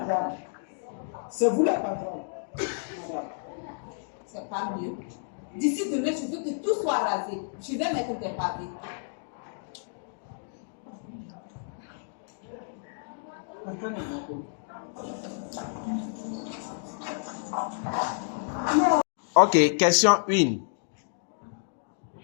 c'est vous la patronne, madame. C'est pas mieux. D'ici demain, je veux que tout soit rasé. Je vais mettre des pavés. Ok, question 1.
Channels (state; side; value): silent; right; digital silence